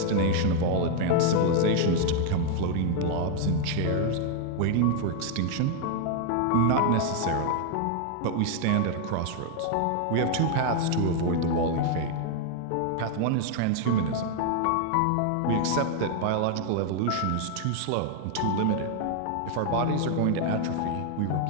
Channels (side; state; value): both; different; correlation 0.00